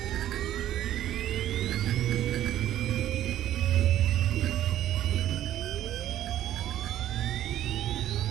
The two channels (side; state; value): left; quieter; 12.3 dB